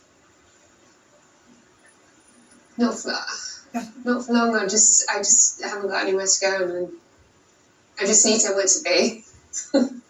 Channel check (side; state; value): both; identical; correlation 1.00